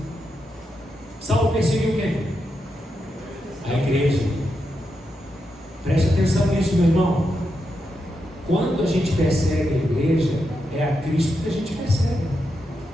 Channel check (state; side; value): normal; both; correlation 0.85